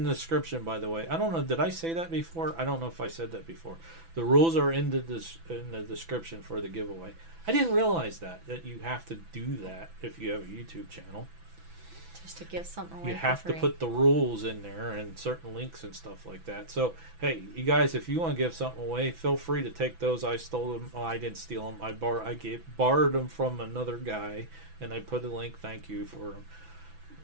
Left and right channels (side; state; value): left; late; 6.0 ms